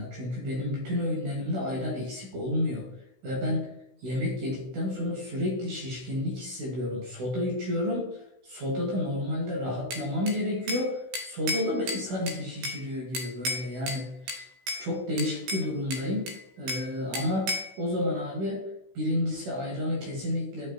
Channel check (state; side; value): late; left; 16 ms